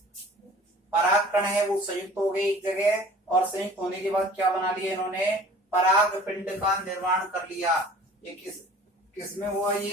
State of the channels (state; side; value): normal; both; correlation 0.47